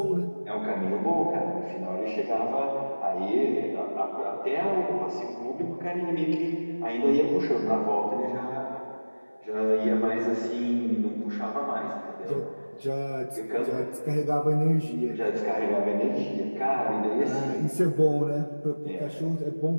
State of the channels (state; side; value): inverted; both; correlation -1.00